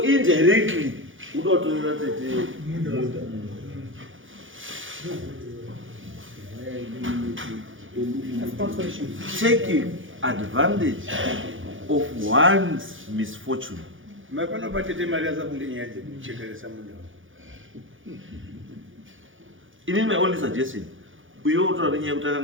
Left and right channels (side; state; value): left; late; 0.57 ms